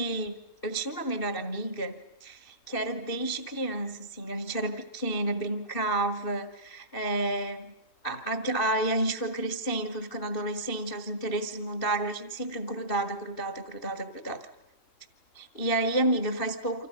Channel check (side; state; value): right; late; 2.7 ms